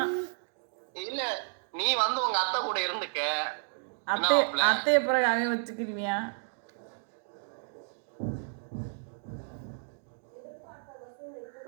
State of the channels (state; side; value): silent; left; digital silence